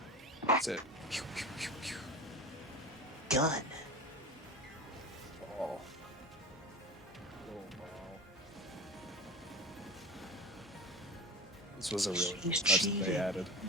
That's it. Pew, pew, pew, pew. Gun. Ball. Little ball. This was a really cool He's touch that they cheating. added.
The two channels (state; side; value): normal; both; correlation 0.30